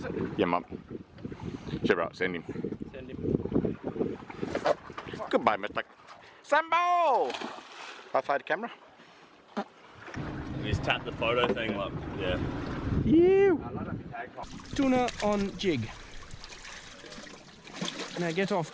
it? Yeah, mum. Sure, right, send him. Send him. Goodbye, Mr. Sambo! High five the camera. You just tap the photo thing like, yeah. You. Tuna on jig. Now get off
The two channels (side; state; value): both; identical; correlation 1.00